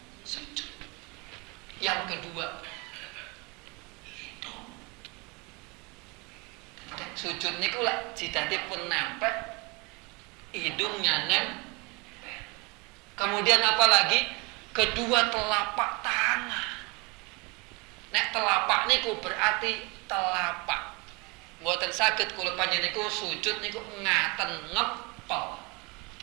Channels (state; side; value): quieter; left; 28.1 dB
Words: sujud. Yang kedua, sujud niku lak jidatipun nempel, hidungnya nempel. Kemudian apa lagi? Kedua telapak tangan. Nek telapak niku berarti telapak. Mboten saged kula panjenengan niku sujud niku ngaten ngepel.